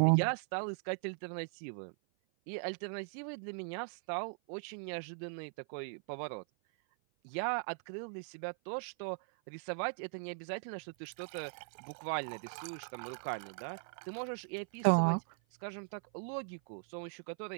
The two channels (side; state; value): left; silent; 52 dB below the other